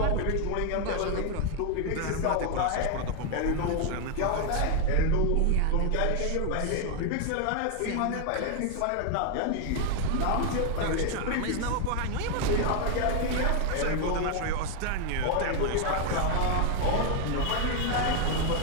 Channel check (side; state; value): both; different; correlation 0.01